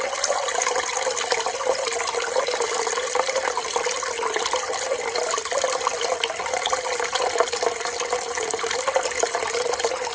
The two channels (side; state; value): both; identical; correlation 1.00